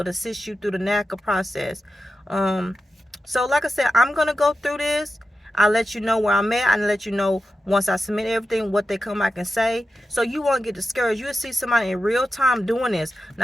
assist you through the NACA process. So like I said, I'm going to go through this. I'll let you know where I'm at. I'll let you know once I submit everything, what they come back and say. So you won't get discouraged. You'll see somebody in real time doing this,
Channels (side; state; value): both; normal; correlation 0.91